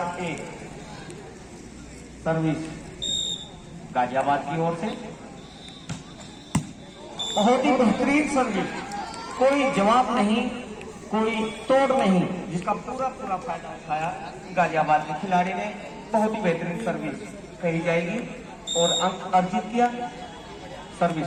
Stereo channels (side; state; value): both; identical; correlation 1.00